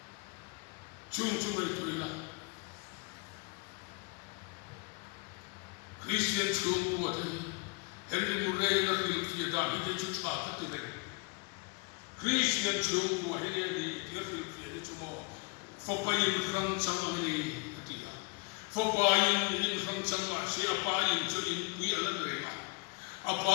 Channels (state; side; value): quieter; right; 30.8 dB